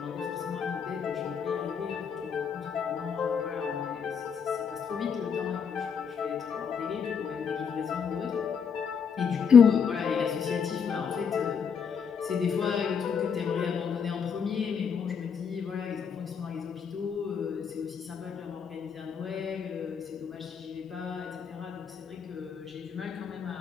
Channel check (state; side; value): quieter; right; 6.7 dB